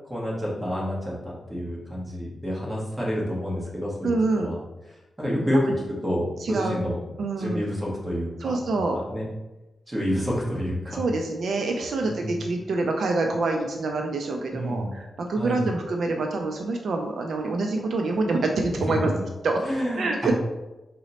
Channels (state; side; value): normal; both; correlation 0.87